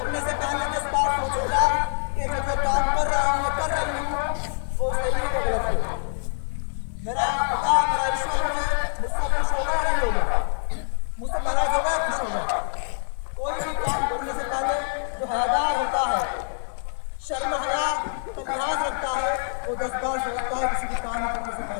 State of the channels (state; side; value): silent; right; digital silence